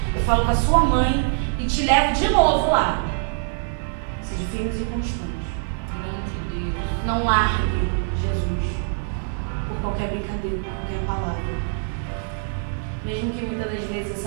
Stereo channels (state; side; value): silent; left; digital silence